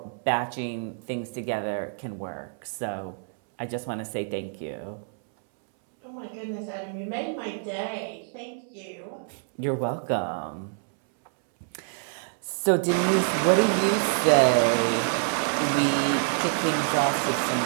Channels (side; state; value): left; silent; 60 dB below the other